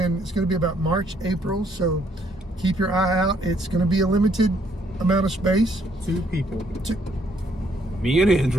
to be about March, April, so keep your eye out. It's going to be a limited amount of space. 2 people. Me and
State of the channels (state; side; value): normal; both; correlation 0.69